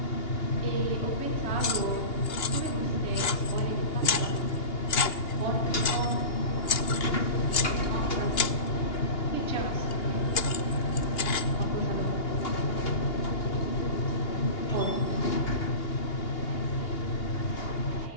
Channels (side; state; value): right; late; 2.8 ms